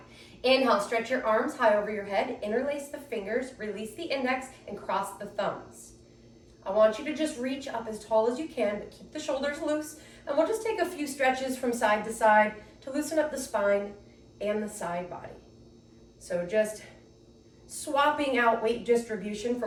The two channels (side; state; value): both; identical; correlation 1.00